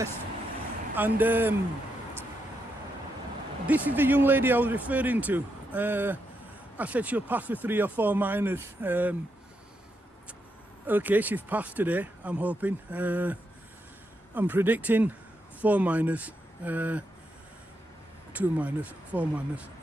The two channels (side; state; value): both; normal; correlation 0.82